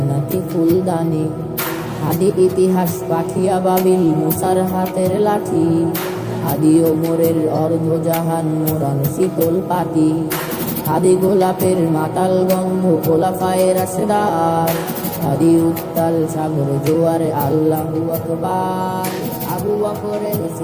ফুলদানি, হাদি ইতিহাস পাঠিয়া বাবিল মুসার হাতের লাঠি, হাদি ওমরের অর্ধজাহান মোরান শীতল পাটি, হাদি গোলাপের মাতাল গন্ধ খোলাফায়ে রাশেদার, হাদি উত্তাল সাগর জোয়ারে আল্লাহু আকবার। আবু বকরের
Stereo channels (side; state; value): both; identical; correlation 1.00